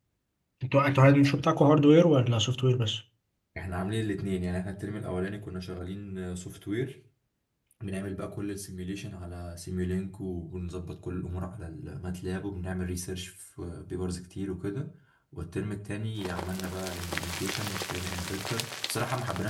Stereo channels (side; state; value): both; identical; correlation 1.00